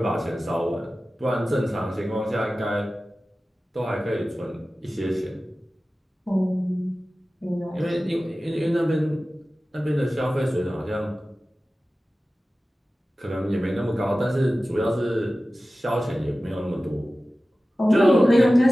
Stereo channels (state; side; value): normal; both; correlation 0.96